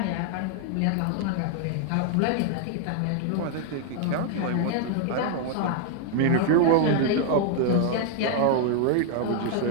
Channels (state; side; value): different; both; correlation 0.00